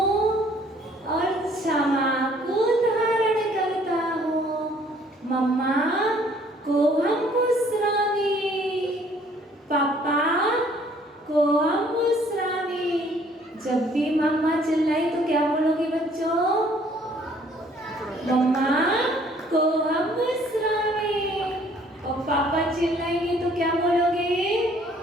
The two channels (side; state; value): both; normal; correlation 0.60